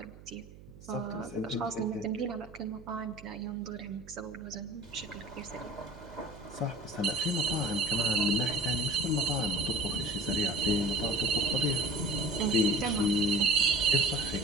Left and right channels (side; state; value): right; noise; hum, 19 dB below the sound